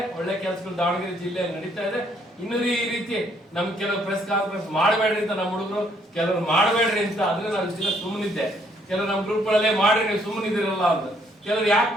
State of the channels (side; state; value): both; normal; correlation 0.68